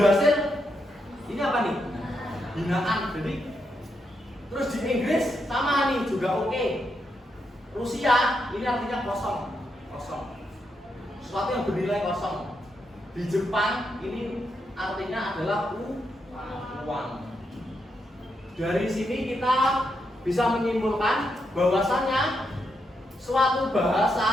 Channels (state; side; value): normal; both; correlation 0.82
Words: ini apa nih? Binaan. Jadi terus di Inggris sama nih juga oke. Rusia ini artinya kosong. Sesuatu yang bernilai kosong. Di Jepang ini artinya adalah uang. Dari sini kita bisa menyimpulkan bahwasannya suatu